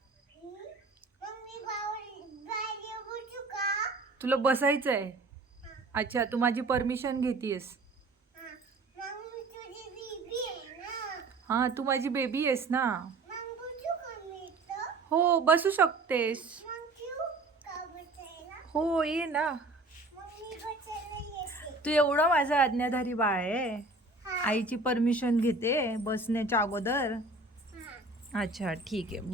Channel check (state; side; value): quieter; left; 3.2 dB